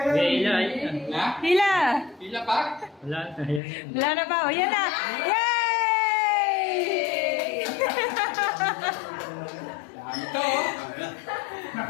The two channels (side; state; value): right; drops out; at 3.6 s